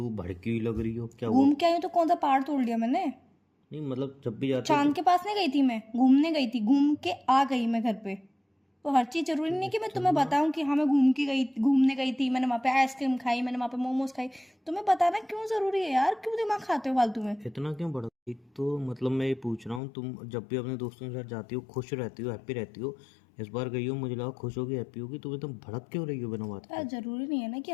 भड़की हुई लग रही हो। क्या हुआ? घूम के आई हूँ तो कौन सा पहाड़ तोड़ लिया मैंने? नहीं मतलब जब भी जाते हो चांद तो के पास नहीं गई थी मैं, घूमने गई थी, घूम के आ गई मैं घर पे। तो हर चीज़ ज़रूरी नहीं कि मैं तुम्हें इतना बताऊँ कि हाँ मैं घूमने गई थी, मैंने वहाँ पे आइसक्रीम खाई, मैंने वहाँ पे मोमोज खाई। तुम्हें बताना क्यों ज़रूरी है यार? क्यों दिमाग खाते हो फालतू में? इतना क्यों बढ़ा? एक तो मतलब मैं ये पूछ रहा हूँ, तुम जब भी अपने दोस्तों के साथ जाती हो खुश रहती हो, हैप्पी रहती हो। इस बार गई हो, मुझे लगा खुश होगी, हैप्पी होगी। तुम एकदम भड़क क्यों रही हो बिना बात यार के? ज़रूरी नहीं है ना कि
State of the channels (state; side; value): drops out; right; at 19.8 s